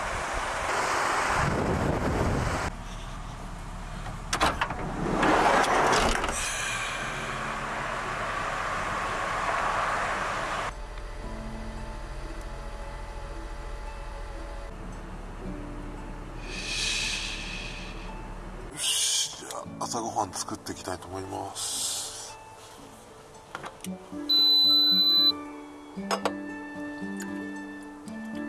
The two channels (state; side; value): identical; both; correlation 1.00